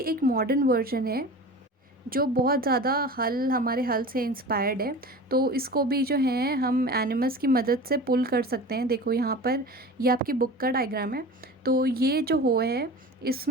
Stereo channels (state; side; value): normal; both; correlation 0.35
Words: एक मॉडर्न वर्जन है जो बहुत ज़्यादा हमारे हल से इंस्पायर्ड है। तो इसको भी जो है हम एनिमल्स की मदद से पुल कर सकते हैं। देखो यहाँ पर ये आपकी बुक का डायग्राम है। तो ये जो हो है